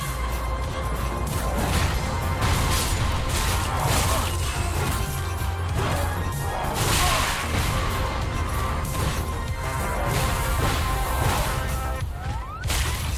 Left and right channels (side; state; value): both; identical; correlation 1.00